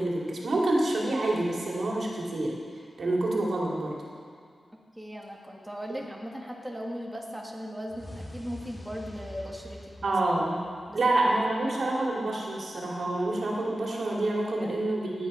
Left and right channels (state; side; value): normal; both; correlation 0.94